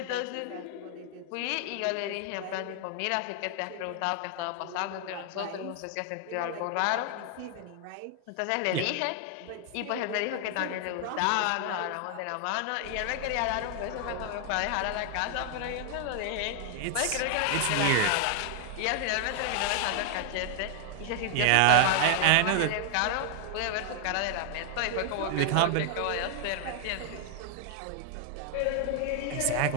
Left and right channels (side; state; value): both; different; correlation 0.00